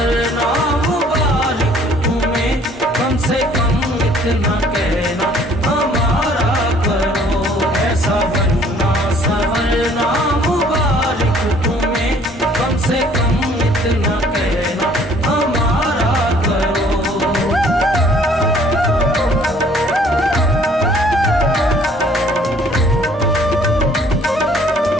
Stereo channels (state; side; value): normal; both; correlation 0.57